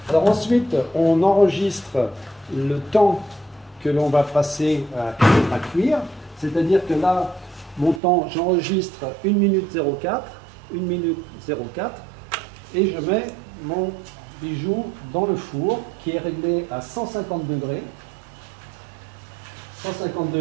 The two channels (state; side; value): drops out; left; at 8.0 s